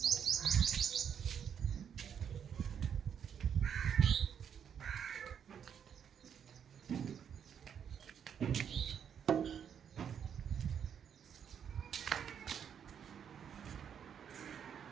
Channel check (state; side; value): quieter; left; 8.1 dB